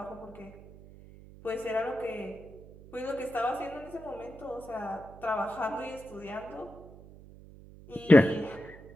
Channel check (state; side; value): noise; right; hum, 19 dB below the sound